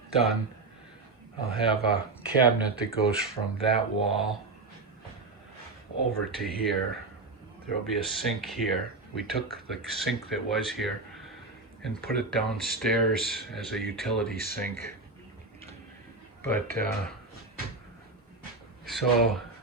done, I'll have a cabinet that goes from that wall over to here. There'll be a sink here. We took the sink that was here and put it downstairs as a utility sink. But so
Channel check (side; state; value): left; quieter; 3.5 dB